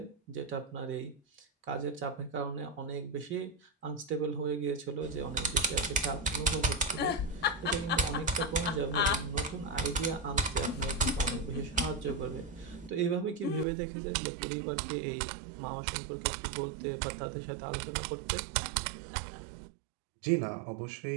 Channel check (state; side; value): drops out; left; at 13.7 s